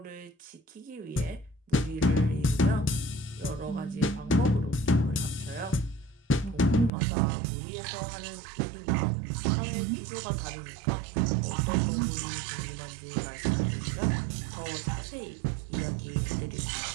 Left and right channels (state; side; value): drops out; left; at 6.9 s